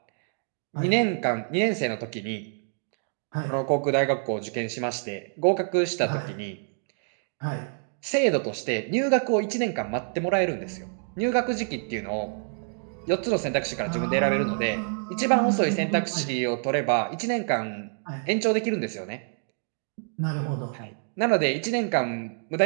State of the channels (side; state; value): left; silent; 60 dB below the other